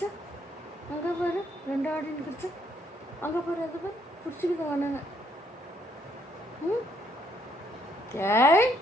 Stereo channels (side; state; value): both; normal; correlation 0.70